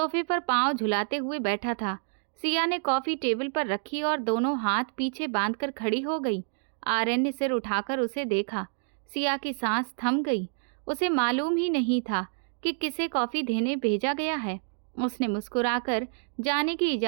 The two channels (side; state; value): left; silent; digital silence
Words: पर पांव झुलाते हुए बैठा था। सिया ने कॉफ़ी टेबल पर रखी और दोनों हाथ पीछे बांधकर खड़ी हो गई। आर्यन ने सिर उठाकर उसे देखा। सिया की सांस थम गई। उसे मालूम ही नहीं था कि किसे कॉफ़ी देने भेजा गया है। उसने मुस्कुराकर जाने की